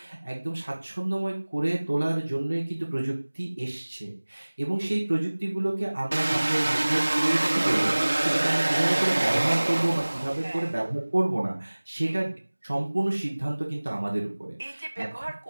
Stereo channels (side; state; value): both; inverted; correlation -1.00